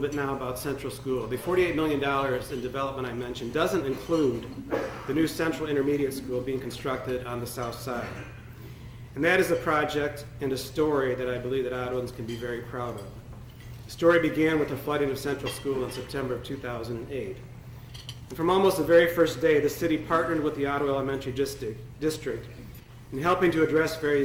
now about Central School. The $48 million in development I mentioned doesn't include the new Central Intermediate School being constructed on the south side. And that is a project and a story that I believe that Ottawans can be very proud of. The story began with the flooding of Central School in September of 2008. And from almost the very first day, the city partnered with the Ottawa Elementary District in helping to address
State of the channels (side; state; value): both; identical; correlation 1.00